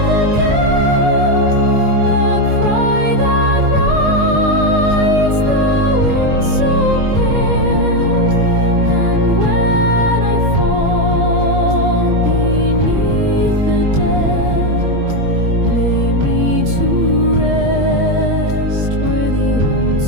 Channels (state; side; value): late; left; 21 ms